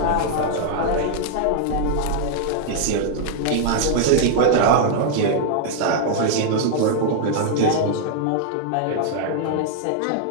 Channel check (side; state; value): both; different; correlation -0.01